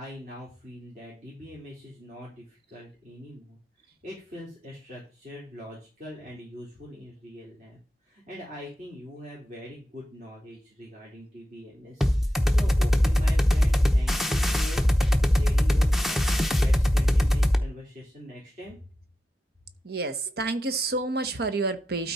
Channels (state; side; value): normal; both; correlation 0.91